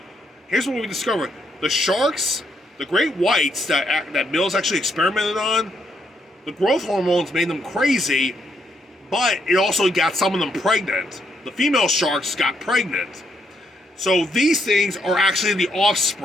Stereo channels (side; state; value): both; normal; correlation 0.75